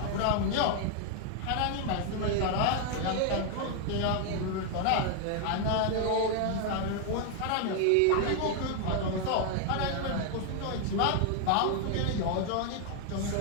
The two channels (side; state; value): both; different; correlation 0.00